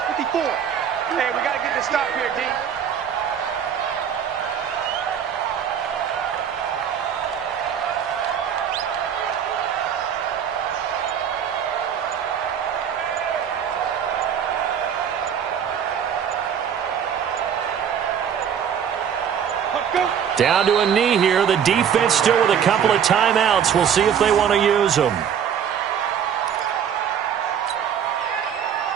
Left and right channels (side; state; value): left; quieter; 8.3 dB